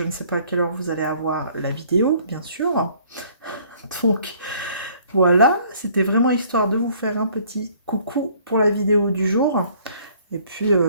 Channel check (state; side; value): inverted; both; correlation -0.59